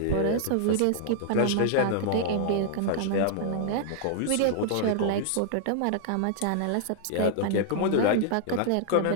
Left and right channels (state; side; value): different; both; correlation -0.01